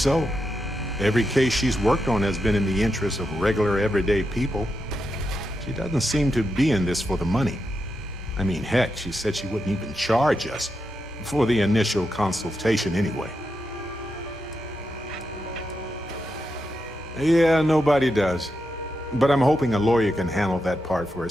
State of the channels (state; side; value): normal; both; correlation 0.85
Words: Every case she's worked on has been in the interest of regular, everyday people. She doesn't seem to be in this for the money. I mean, heck, she said she wouldn't even charge us for the initial consultation anyway. Yeah, nobody does. But I'm hoping a lawyer can handle that part for